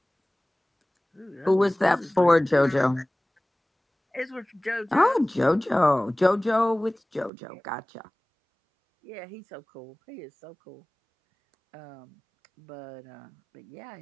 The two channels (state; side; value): drops out; left; at 7.3 s